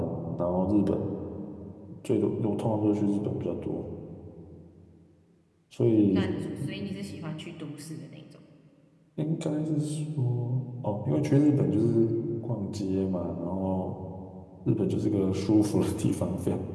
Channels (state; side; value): identical; both; correlation 1.00